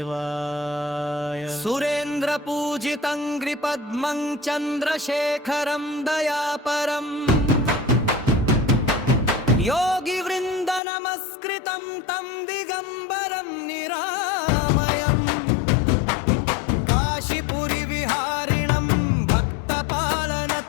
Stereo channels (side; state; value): right; drops out; at 10.8 s